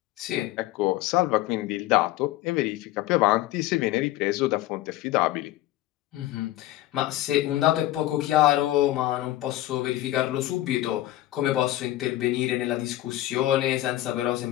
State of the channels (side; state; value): right; quieter; 15.4 dB